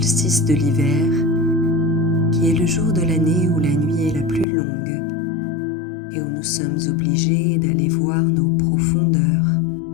de l'hiver qui est le jour de l'année où la nuit est la plus longue et où nous sommes obligés d'aller voir nos profondeurs,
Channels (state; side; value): drops out; right; at 4.5 s